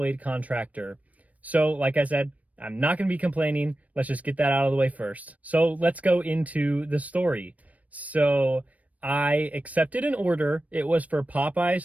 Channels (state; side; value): late; left; 0.069 ms